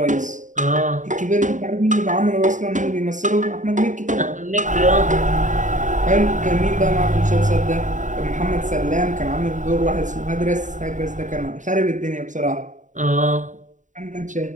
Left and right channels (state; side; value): late; left; 0.36 ms